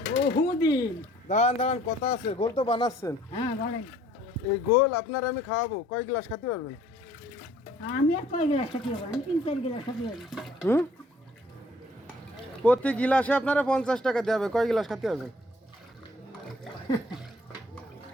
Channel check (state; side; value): normal; both; correlation 0.57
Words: বহুদিন। দাঁড়ান দাঁড়ান, কথা আছে। গোল তো বানাচ্ছেন, হ্যাঁ বলেন। এই গোল আপনার আমি খাওয়াবো। কয় গ্লাস খেতে পারবেন? আমি আর কয় গ্লাস খাতে পারবো? আমি 3-4 গ্লাস খাতে পারবো। হুম, প্রতি গিলাসে আপনারা 50 টাকা দেওয়া হবে। কয় গ্লাস খেতে পারবেন